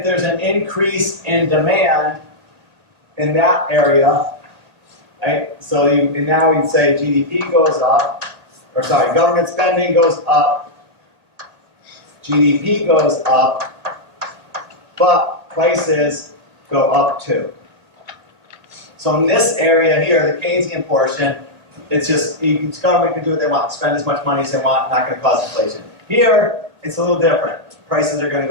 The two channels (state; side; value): late; left; 1.9 ms